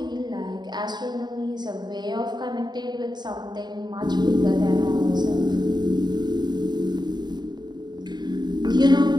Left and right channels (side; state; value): left; late; 0.21 ms